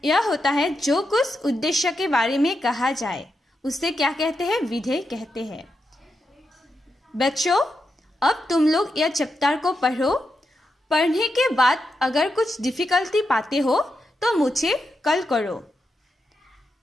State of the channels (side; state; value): both; normal; correlation 0.85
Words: यह होता है जो कुछ उद्देश्य के बारे में कहा जाए उसे क्या कहते हैं? विधेय कहते हैं. बच्चों, अब तुम लोग यह चैप्टर को पढ़ो. पढ़ने के बाद अगर कुछ डिफिकल्टी पाते हो तो मुझे कॉल करो.